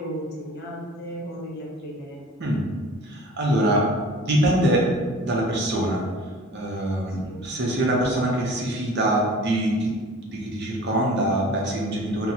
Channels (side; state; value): both; normal; correlation 0.44